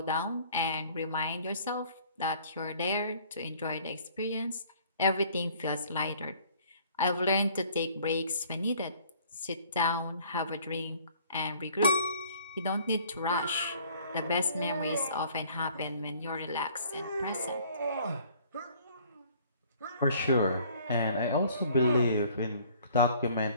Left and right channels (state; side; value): inverted; both; correlation -0.55